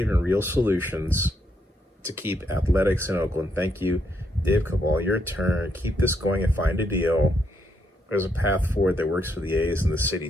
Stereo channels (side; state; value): both; normal; correlation 0.77